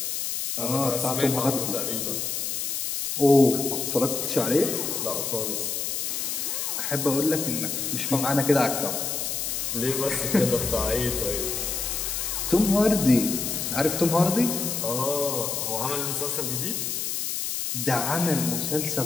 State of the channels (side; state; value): left; noise; hiss, 2 dB below the sound